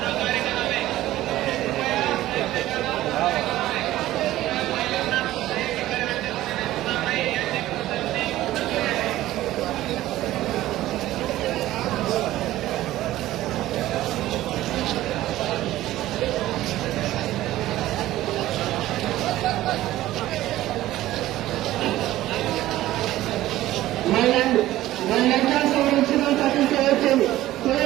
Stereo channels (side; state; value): left; quieter; 15.2 dB